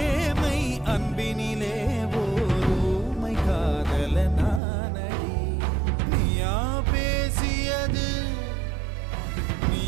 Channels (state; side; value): drops out; left; at 4.6 s